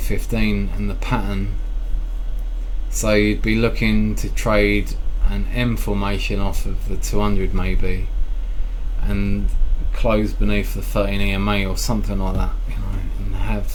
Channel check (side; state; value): both; identical; correlation 1.00